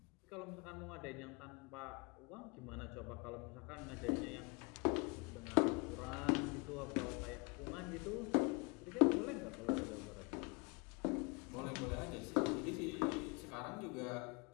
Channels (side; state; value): right; quieter; 30.7 dB